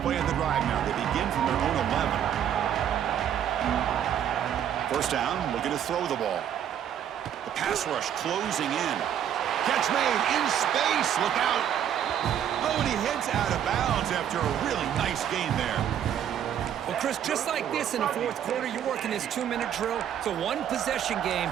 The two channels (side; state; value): left; quieter; 9.7 dB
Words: play of the drive now. They begin from their own 11. First down, looking to throw the ball. The pass rush closing in. Catch made in space. Look out. Oh, and he heads out of bounds after a really nice gain there. Well, Chris, just like this in the 4th quarter, you're working this 2-minute drill. It's a one-possession game.